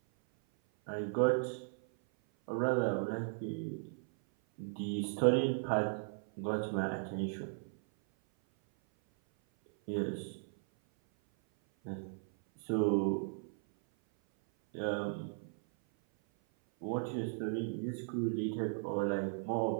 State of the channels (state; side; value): silent; left; 53 dB below the other